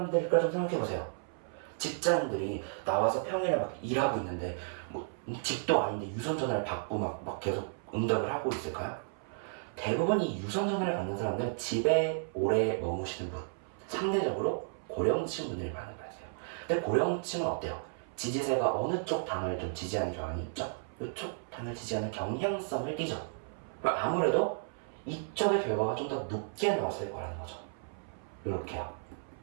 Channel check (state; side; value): silent; left; 55 dB below the other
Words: 좀 생각해보세요. 직장인들이 나와서 평일에 막 일하고 있는데 뭐 집도 아닌데 유선 전화를 받고 막 계속 응답을 하고 있을까요? 대부분 이 유선 전화를 받는 사람들은 집에 오래 머무시는 분, 상대적으로 고령층 분들이 많은 거예요. 근데 고령층은 어때요? 지지세가 어느 쪽 당을 좀 지지하는 경향이 있죠? 이쪽 당을 지지하는 경향성을 띠죠. 그럼 아무래도 이쪽의 결과가 좀 더 높게 나왔을 거라는 거죠. 이렇게요.